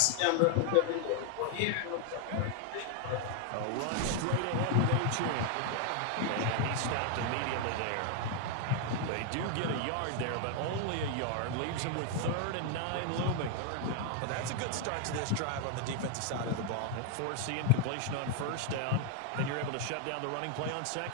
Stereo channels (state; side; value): different; both; correlation 0.00